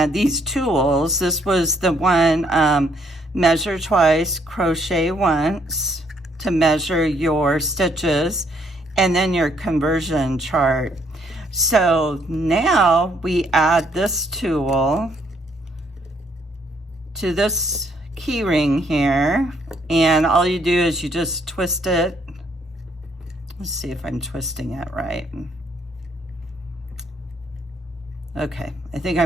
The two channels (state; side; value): normal; both; correlation 0.69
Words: these tools. This was the one, measure twice, crochet once, to measure your stitches, and then your conversion chart. So now we add this tool to this key ring here, and all you do is you just twist it. Let's see if I'm twisting it right. Okay, I think